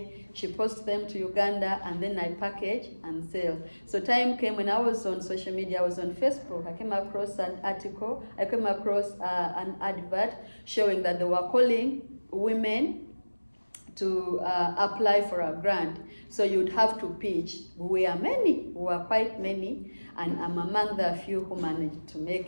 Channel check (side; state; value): both; inverted; correlation -1.00